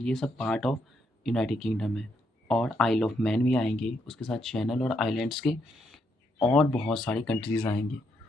सब पार्ट ऑफ यूनाइटेड किंगडम है। और आइल ऑफ मैन भी आएंगे, उसके साथ चैनल और आइलैंड्स के और बहुत सारी कंट्रीज़ आएंगे।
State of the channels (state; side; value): normal; both; correlation 0.77